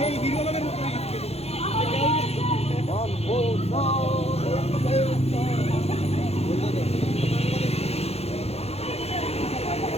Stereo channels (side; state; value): right; late; 0.30 ms